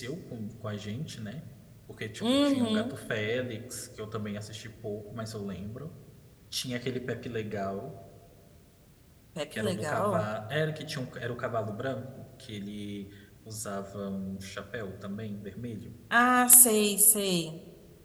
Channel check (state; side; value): identical; both; correlation 1.00